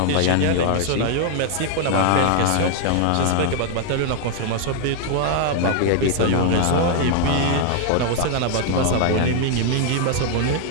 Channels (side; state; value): both; different; correlation 0.00